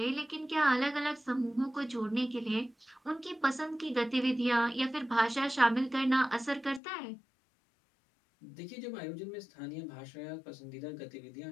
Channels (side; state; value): right; drops out; at 6.8 s